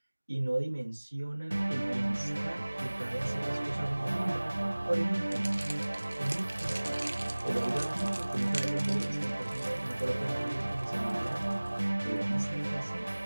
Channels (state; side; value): inverted; both; correlation -1.00